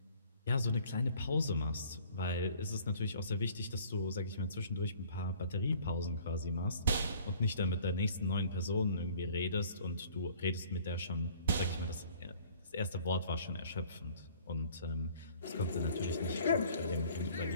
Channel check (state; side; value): inverted; both; correlation -0.53